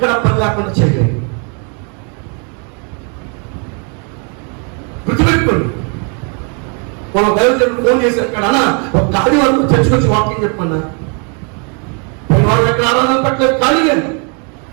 పని లేకుండా చేయలేదు. గుర్తుపెట్టుకోండి. మనం దైవజనుడు ఫోన్ చేసి అక్కడ ఒక ఖాళీ వరకు చర్చకొచ్చి వాకింగ్ చెప్పన్నా, వాళ్ళు ఎక్కడ ఆరాధన పట్టలేదు, ఖాళీ లేదు.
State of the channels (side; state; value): left; quieter; 37.4 dB